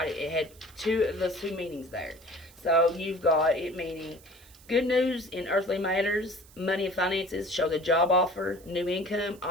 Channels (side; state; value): right; noise; hiss, 24 dB below the sound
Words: It had those two meanings there. So you've got it meaning good news in earthly matters, money and finances, show the job offer, new income,